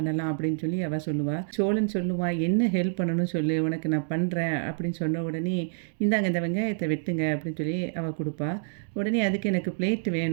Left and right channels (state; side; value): silent; left; digital silence